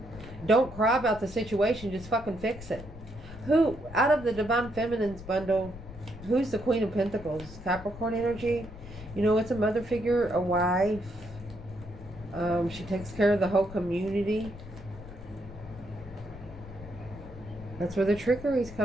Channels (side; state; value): left; noise; rumble, 15 dB below the sound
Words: Don't cry about the situation, just fucking fix it. Who, out of the Divine Feminine's bundle, who's the Queen of Pentacles? Capricorn energy. You know, it's a mother figure, a wife. She takes care of the whole community. That's where the trickery is